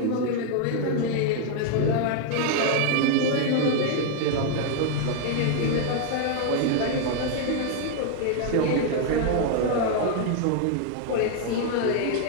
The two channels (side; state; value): both; different; correlation 0.00